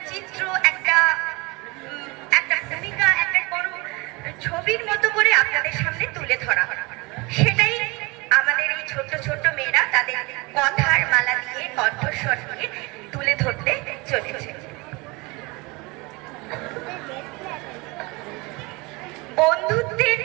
চিত্র, একটা ভূমিকা, একটা কোনো ছবির মতো করে আপনাদের সামনে তুলে ধরা। সেটাই আমাদের এই ছোট্ট ছোট্ট মেয়েরা তাদের কথার মালা দিয়ে, কণ্ঠস্বর দিয়ে তুলে ধরতে চলেছে। বন্ধুত্বের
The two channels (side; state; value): left; quieter; 25.8 dB